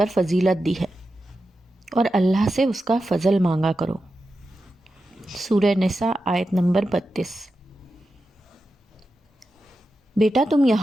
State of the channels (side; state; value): both; normal; correlation 0.91